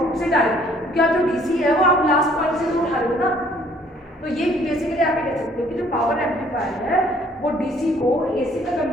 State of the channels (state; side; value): normal; both; correlation 0.60